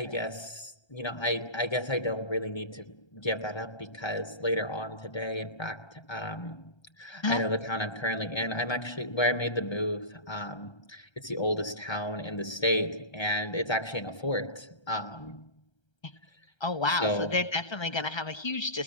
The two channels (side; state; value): right; late; 1.3 ms